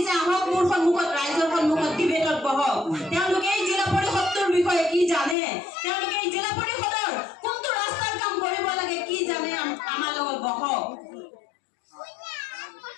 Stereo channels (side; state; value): right; drops out; at 5.4 s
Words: আহক মোৰ সন্মুখত ৰাইজৰ সন্মুখত ডিবেটত বহক তেওঁলোকে এই জিলা পৰিষদৰ বিষয়ে কি জানে তেওঁলোকে এই জিলা পৰিষদৰ কোনটো ৰাস্তাৰ কাম কৰিব লাগে কি জানে আমাৰ লগত বহক